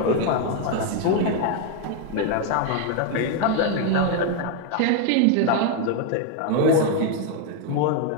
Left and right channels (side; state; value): both; different; correlation 0.01